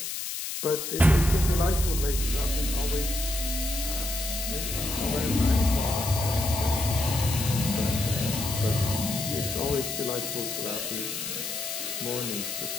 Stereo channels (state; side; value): noise; left; hiss, 4 dB below the sound